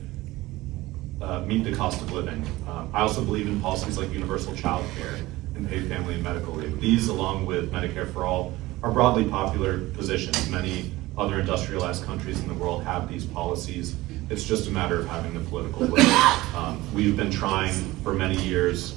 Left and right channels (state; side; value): quieter; left; 18.7 dB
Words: meet the cost of living. I also believe in policies like universal child care and paid family and medical leave. These, along with Medicare for All, are broadly popular positions. Many other industrialized countries in the world have these policies. It's just a matter of having the political will. We've been trying for many years.